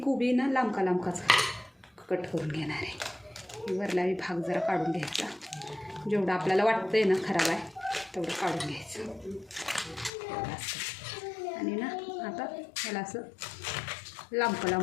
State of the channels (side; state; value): right; drops out; at 10.1 s